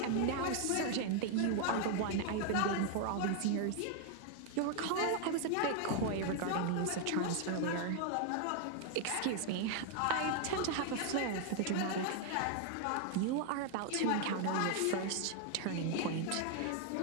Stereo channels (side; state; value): both; different; correlation 0.00